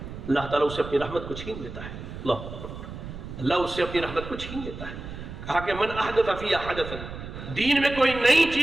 اللہ تعالیٰ اسے اپنی رحمت کو چھین لیتا ہے، اللہ اس سے اپنی رحمت کو چھین لیتا ہے۔ کہا کہ من احدث فیہا حدثا، دین میں کوئی نئی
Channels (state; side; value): noise; right; rumble, 10 dB below the sound